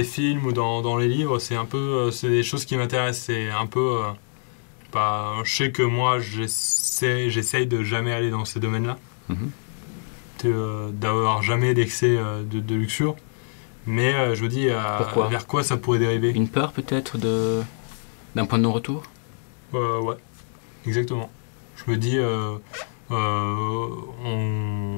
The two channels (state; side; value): silent; right; 57 dB below the other